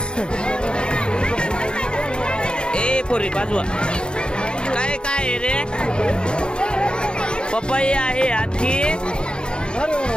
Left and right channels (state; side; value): late; right; 0.051 ms